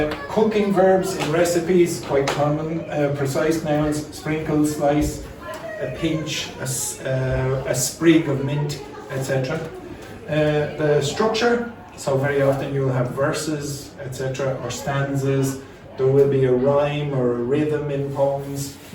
Cooking verbs in recipes, quite common. Precise nouns, sprinkle, slice, a pinch, a sprig of mint, etc. The structure, so very often you'll have verses, etc., or stanzas. There will be a rhyme or a rhythm in poems.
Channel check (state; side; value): identical; both; correlation 1.00